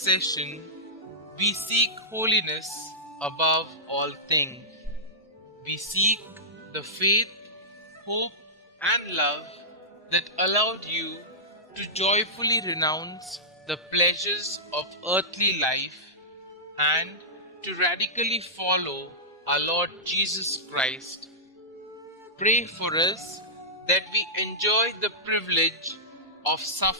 we seek holiness above all things. We seek the faith, hope, and love that allowed you to joyfully renounce the pleasures of earthly life and to radically follow our Lord Jesus Christ. Pray for us that we enjoy the privilege of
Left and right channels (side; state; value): both; normal; correlation -0.15